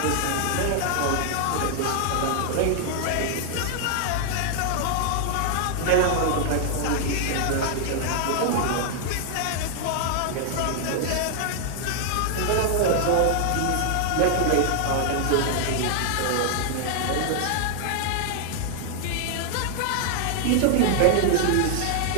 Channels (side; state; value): both; different; correlation 0.00